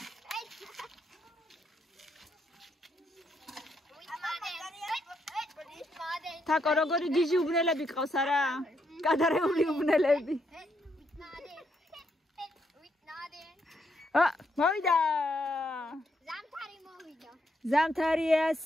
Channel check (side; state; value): both; normal; correlation 0.77